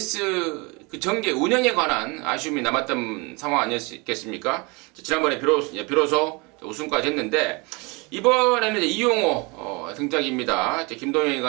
그 전개 운영에 관한 아쉬움이 남았던 상황 아니었겠습니까? 지난번에 비로소 우승까지 했는데, 이번에는 이제 이용호 등장입니다.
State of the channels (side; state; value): left; quieter; 28.2 dB